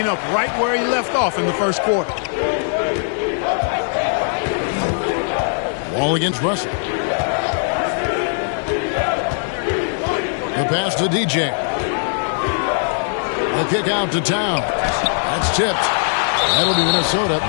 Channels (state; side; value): silent; right; digital silence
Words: up right where he left off in the first quarter. Wall against Russell. The pass to DJ. The kick out to Towns. That's tipped. That'll be Minnesota